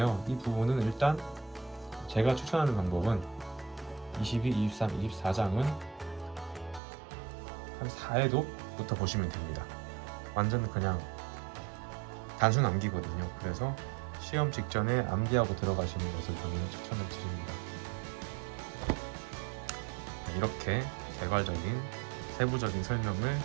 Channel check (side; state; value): left; drops out; at 6.8 s